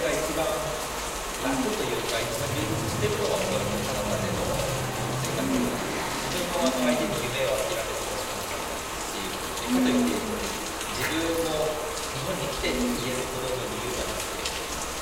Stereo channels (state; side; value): identical; both; correlation 1.00